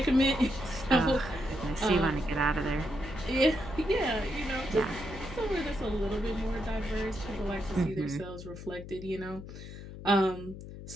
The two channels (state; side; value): noise; left; hum, 12 dB below the sound